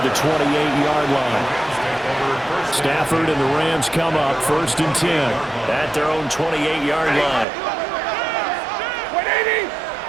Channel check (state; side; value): drops out; left; at 7.5 s